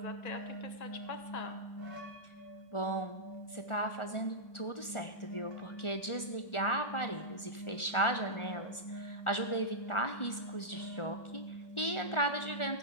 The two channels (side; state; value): right; late; 1.4 ms